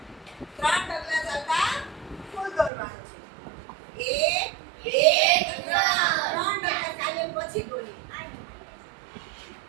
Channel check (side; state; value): left; drops out; at 2.7 s